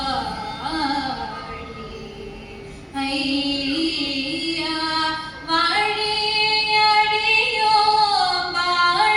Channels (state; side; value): identical; both; correlation 1.00